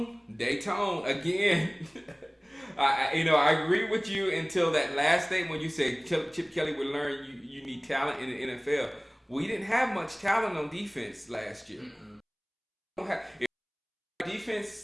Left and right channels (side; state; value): both; identical; correlation 1.00